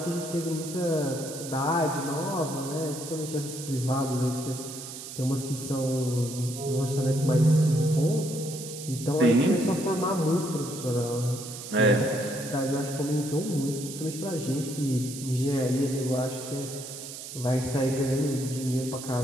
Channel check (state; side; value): noise; right; hiss, 11 dB below the sound